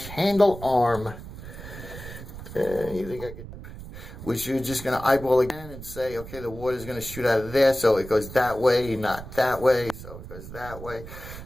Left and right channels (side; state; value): right; noise; rumble, 13 dB below the sound